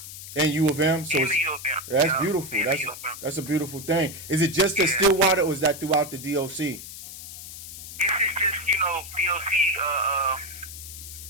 And U of M, so that's beautiful. That's a beautiful thing. Is it just at Stillwater, or is that throughout the DOC? This is just DOC.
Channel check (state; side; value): noise; left; hiss, 12 dB below the sound